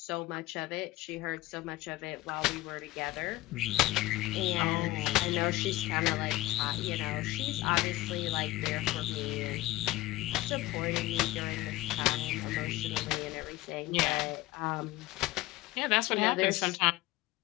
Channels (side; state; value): right; quieter; 18.3 dB